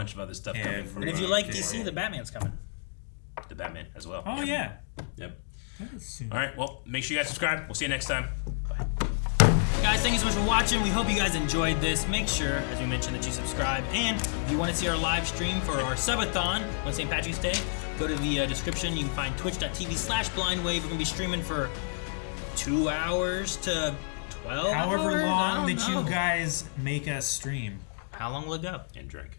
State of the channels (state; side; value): silent; right; digital silence